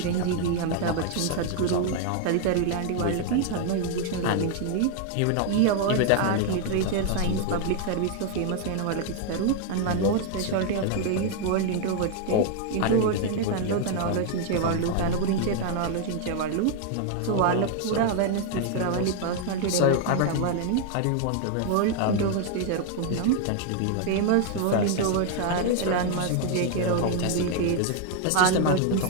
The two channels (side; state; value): both; different; correlation 0.00